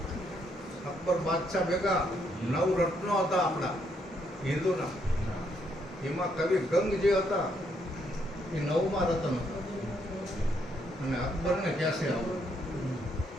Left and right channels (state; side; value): normal; both; correlation 0.74